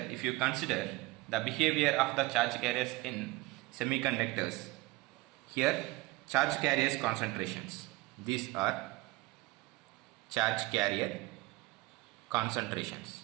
if you consider the behavior of the charge carriers in semiconductors, here charge carriers concentrations. These are charge carrier concentrations.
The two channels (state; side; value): quieter; left; 20.8 dB